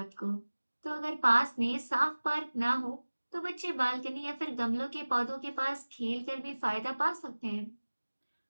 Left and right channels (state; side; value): inverted; both; correlation -1.00